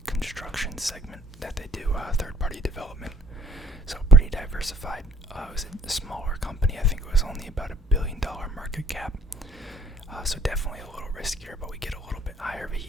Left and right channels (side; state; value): both; normal; correlation 0.60